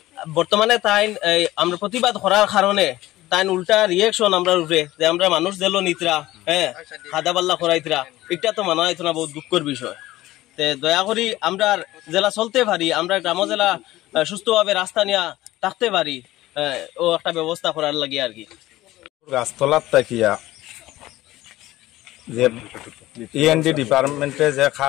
বর্তমানে তাই আমরা প্রতিবাদ করার কারণে তাই উল্টা রিয়েকশন আমরা উপরে যে আমরা মানুষ দিল নিতরা, খাদা পাল্লা করাইতরা, এটা তো মানা হইতো না, বহুত দুঃখের বিষয়। তে দয়া করি আমরা জেলা চলতে পারি, আমরা গ্রাম জেলা সুস্থভাবে রাস্তা নিয়ে থাকতে পারি, ও একটা ব্যবস্থা করার লাগে আর কি। গাছতলার তাকিয়া যে ইএনডি ডিপার্টমেন্টে যে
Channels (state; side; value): quieter; right; 16.5 dB